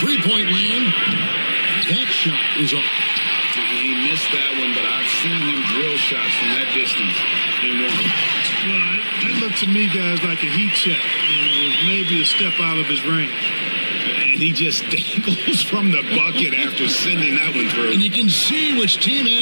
land, that shot is off. He missed that one, but I've seen him drill shots from that distance in one. Well, that looked to me, guys, like a heat check. It was maybe a step out of his range. And he just dangles from the bucket after sending that one through. And you can see which team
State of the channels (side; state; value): both; inverted; correlation -1.00